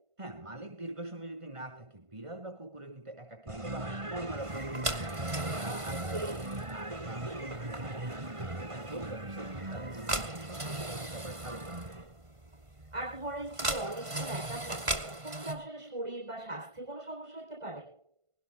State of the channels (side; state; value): left; late; 1.5 ms